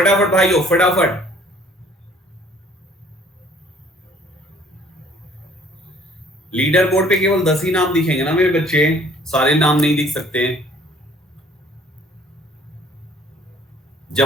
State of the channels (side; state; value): both; normal; correlation 0.57